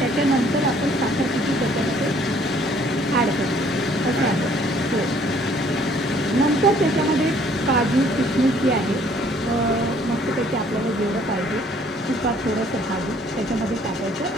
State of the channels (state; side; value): normal; both; correlation 0.60